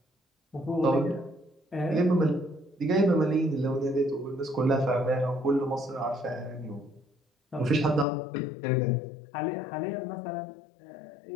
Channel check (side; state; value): right; drops out; at 8.1 s